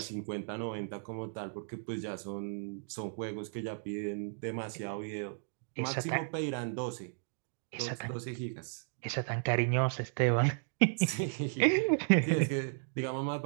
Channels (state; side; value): silent; left; digital silence